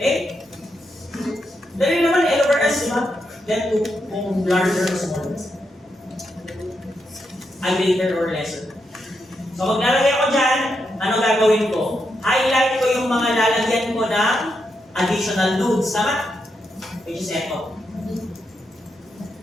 Dali naman, L over S, diba? Then 2, kung larger or smaller. Greater or lesser. So, maglalagay ako dyan, ano gagawin ko? Highlight ko yung mga lalagyan ko ng additional nodes, tama? Which is echo.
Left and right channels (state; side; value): normal; both; correlation 0.83